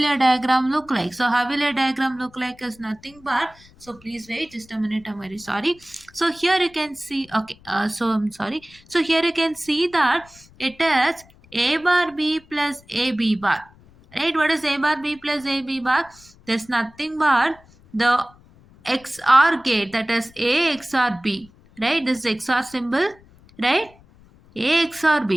diagram look like? So how will your diagram look like is nothing but, so please wait just a minute, I'm very sorry. So here you can see, okay, so I'm sorry. So here you can see that it is A bar B plus AB bar, right? What is A bar B plus AB bar? There's nothing but the XOR gate, that is A XOR B, right? This is XOR symbol, right? A XOR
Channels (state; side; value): noise; left; rumble, 26 dB below the sound